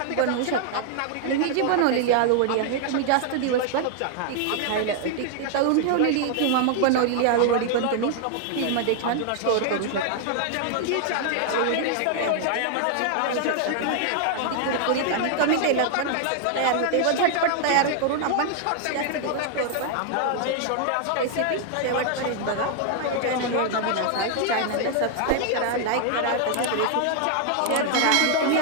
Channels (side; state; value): both; different; correlation 0.00